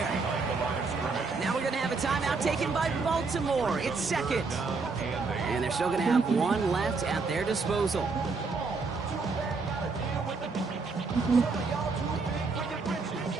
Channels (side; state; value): left; quieter; 4.3 dB